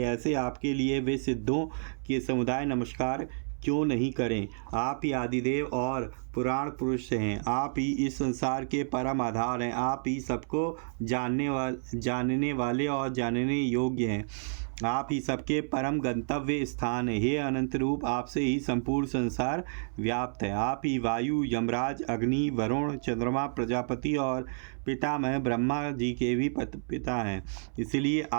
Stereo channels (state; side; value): silent; left; 58 dB below the other